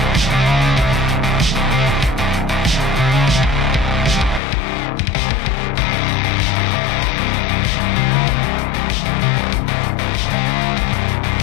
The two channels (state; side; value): drops out; right; at 4.4 s